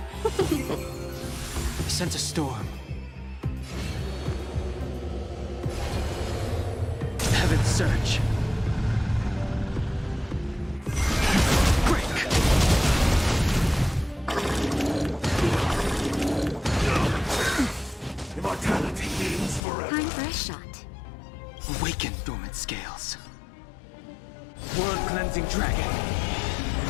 Sense a storm. Heaven surge. Break. Immortality means forever. Time for a shot. Awaken dormant scales. World cleansing dragon.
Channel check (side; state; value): right; drops out; at 19.6 s